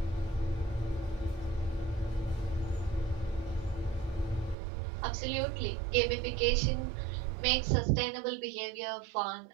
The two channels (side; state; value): left; drops out; at 4.5 s